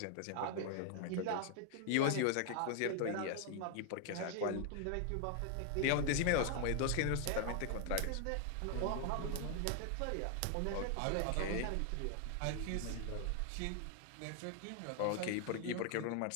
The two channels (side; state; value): both; different; correlation 0.00